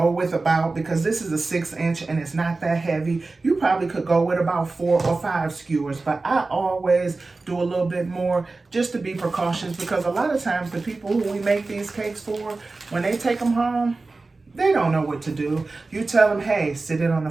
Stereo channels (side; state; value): left; quieter; 3.6 dB